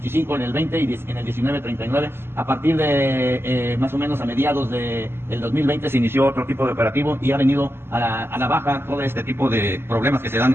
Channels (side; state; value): left; late; 0.11 ms